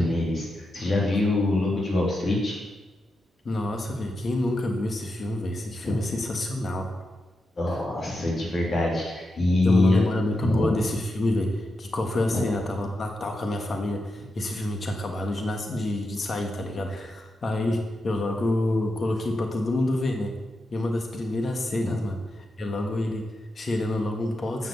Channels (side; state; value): both; normal; correlation 0.88